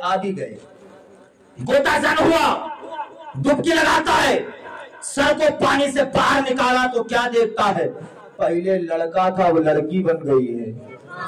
भी गए, गोताजन हुआ। डुबकी लगाता है, सर को पानी से बाहर निकाला तो क्या देखता है, पहले लड़का था वो लड़की बन गई है।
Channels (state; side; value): identical; both; correlation 1.00